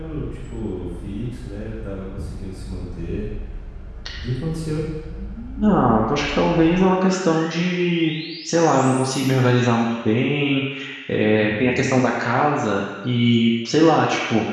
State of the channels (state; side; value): identical; both; correlation 1.00